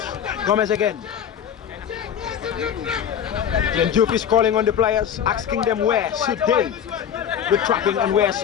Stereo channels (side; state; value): right; quieter; 8.8 dB